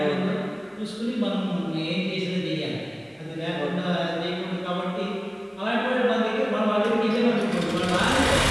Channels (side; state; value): both; identical; correlation 1.00